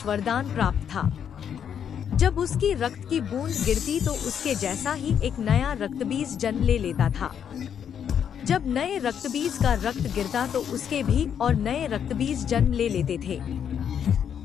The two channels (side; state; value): right; quieter; 8.4 dB